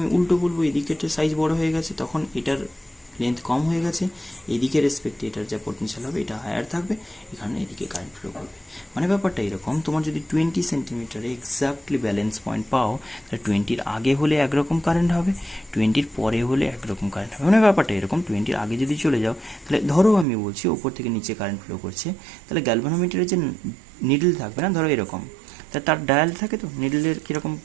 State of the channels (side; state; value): left; drops out; at 20.2 s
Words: উল্টো বলবো এদিকের সাইজ বড় হয়ে গেছে, তখন এটার লেন্থ কম হয়ে গেছে, এদিকে রেসপেক্টে এটার যা পোটেনশিয়াল হবে এটা হায়ার থাকবে, এখানে এদিকে কারেন্ট ফ্লো করবে। মানে ব্যাপারটা এরকম, তোমার যদি 20 সেন্টিমিটারে এক্স্যাক্টলি ব্যালেন্স পয়েন্ট পাও, তাহলে 20-র আগে হলে একরকম কারেন্ট হবে, 20-র পরে হলে একরকম কারেন্ট হবে। মানে ব্যাপারটা এরকম, 20-র আগে যদি চলে যাও, তাহলে ধরো আমি বলছি ওপর থেকে নিচে কারেন্ট ফ্লো করছে, তাহলে গ্যালভানোমিটারের যে নিডল থাকবে না, ধরো এরকম, তা তার ডায়াল থাকে, তো নিডলের কীরকম